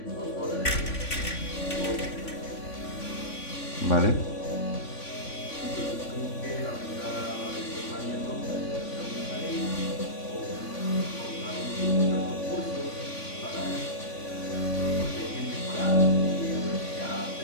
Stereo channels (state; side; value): late; right; 3.5 ms